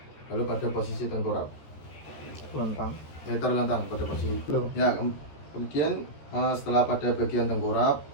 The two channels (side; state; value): right; late; 14 ms